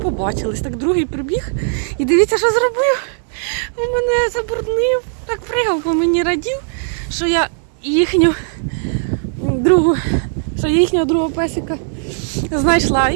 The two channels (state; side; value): silent; left; 68 dB below the other